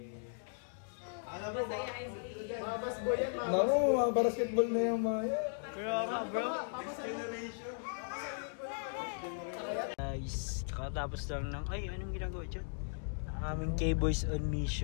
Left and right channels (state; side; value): silent; right; digital silence